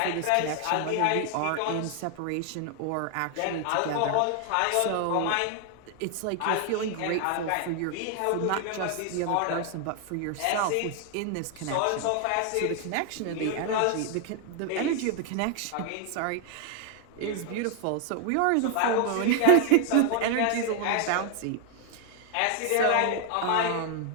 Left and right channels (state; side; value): different; both; correlation 0.00